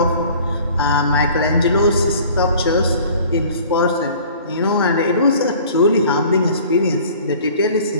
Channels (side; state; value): both; inverted; correlation -0.49